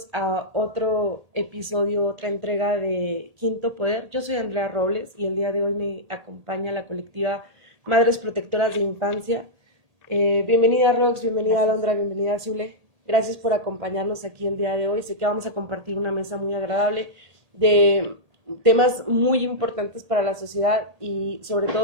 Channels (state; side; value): late; left; 1.8 ms